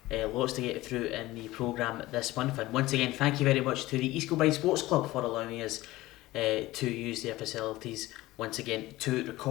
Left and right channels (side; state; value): right; quieter; 18.1 dB